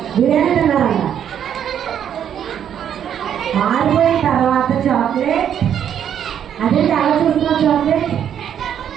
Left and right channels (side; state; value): left; quieter; 9.3 dB